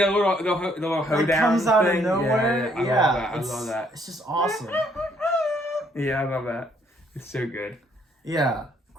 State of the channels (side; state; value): both; normal; correlation 0.67